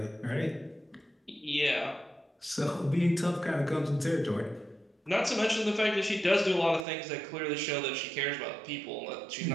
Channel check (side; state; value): left; drops out; at 6.9 s